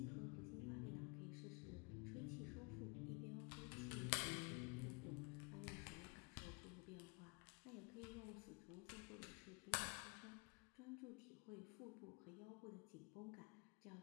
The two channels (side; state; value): right; quieter; 31.0 dB